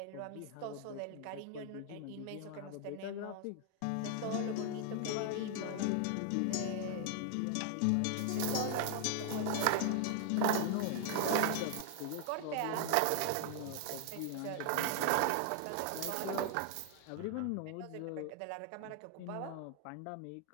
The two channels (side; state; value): both; different; correlation 0.00